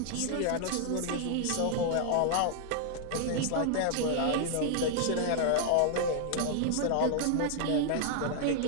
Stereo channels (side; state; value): both; different; correlation -0.01